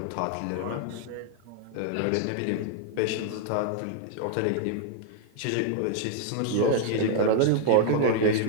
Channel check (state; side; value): different; both; correlation 0.00